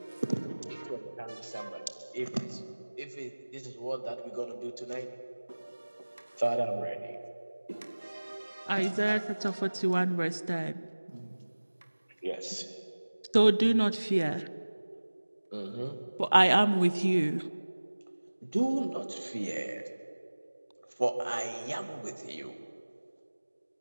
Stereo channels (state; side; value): inverted; both; correlation -1.00